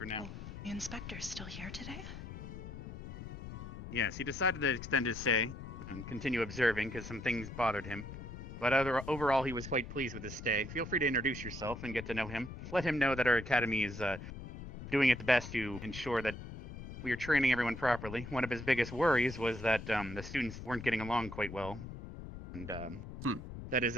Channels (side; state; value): left; noise; rumble, 10 dB below the sound